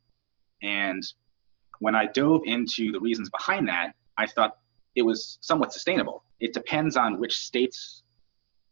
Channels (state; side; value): silent; left; 59 dB below the other